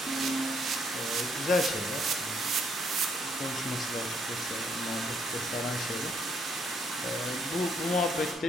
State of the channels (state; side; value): normal; both; correlation 0.70